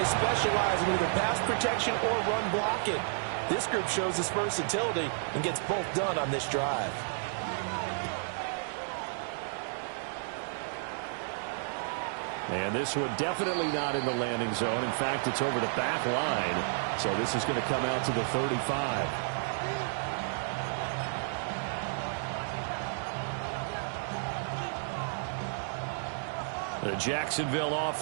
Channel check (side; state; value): left; silent; digital silence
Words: specialize in either pass protection or run blocking. This group shows its versatility and gets both done on this drive. And this one definitely not in the landing zone. In fact, it's over the back line. So this is going to come out to the 35. The Jacksonville